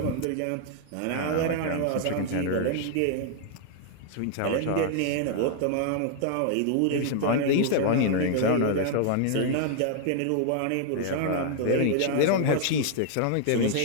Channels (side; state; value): both; different; correlation 0.00